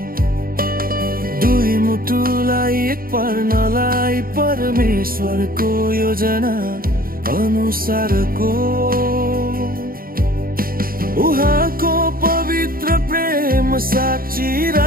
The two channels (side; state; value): left; late; 0.42 ms